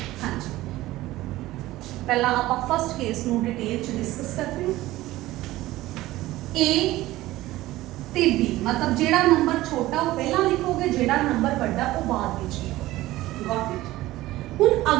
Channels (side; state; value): left; quieter; 16.9 dB